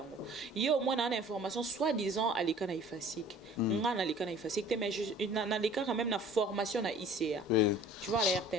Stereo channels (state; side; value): normal; both; correlation 0.48